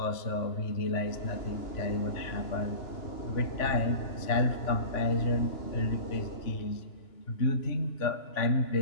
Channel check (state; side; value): late; right; 2.9 ms